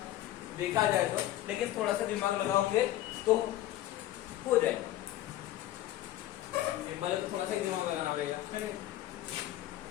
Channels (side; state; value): right; quieter; 14.2 dB